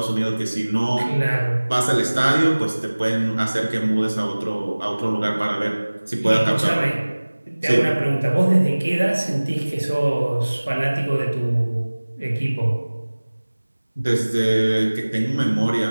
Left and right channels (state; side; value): inverted; both; correlation -1.00